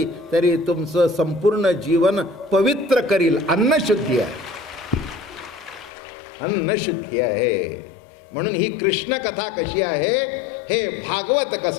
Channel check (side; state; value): right; drops out; at 5.9 s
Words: तरी तुमचं संपूर्ण जीवन पवित्र करील. अन्नशुद्धी आहे, अन्नशुद्धी आहे. म्हणून ही कृष्ण कथा कशी आहे, हे भागवत